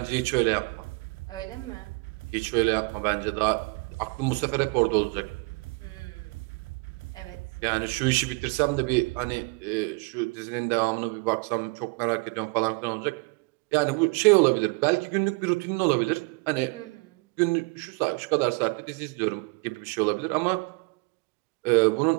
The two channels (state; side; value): quieter; left; 29.9 dB